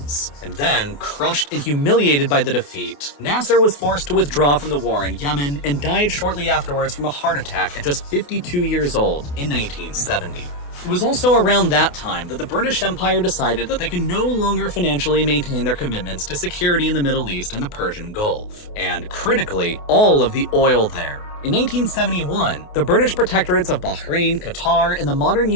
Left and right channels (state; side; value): late; right; 28 ms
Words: And then, crushed and humiliated by the defeat, Nasser was forced to withdraw from the war in Yemen and died shortly afterwards from a heart attack at just 52 years old in 1970. It was also around that time that the British Empire decided that they could no longer financially maintain their commitments to security in the Middle East and the Persian Gulf, and critically, all of the oil there. In 1971, the British protectorates of Bahrain, Qatar, and the modern